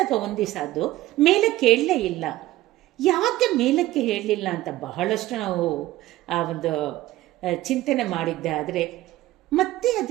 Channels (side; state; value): left; quieter; 16.4 dB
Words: ಒಂದು ದಿವಸ ಅದು ಮೇಲಕ್ಕೆ ಹೇಳಲೇ ಇಲ್ಲ. ಯಾಕೆ ಮೇಲಕ್ಕೆ ಹೇಳಲಿಲ್ಲ ಅಂತ ಬಹಳಷ್ಟು ನಾವು ಆ ಒಂದು ಚಿಂತನೆ ಮಾಡಿದ್ದೆ. ಆದರೆ ಮತ್ತೆ